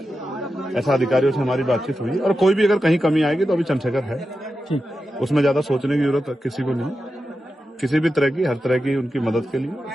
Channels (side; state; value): both; normal; correlation 0.90